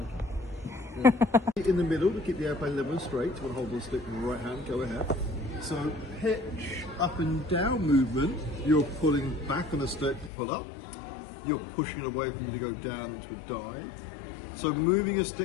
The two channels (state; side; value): drops out; right; at 10.3 s